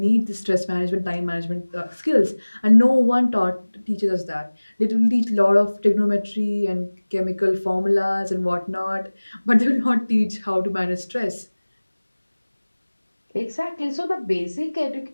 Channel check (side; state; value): both; inverted; correlation -1.00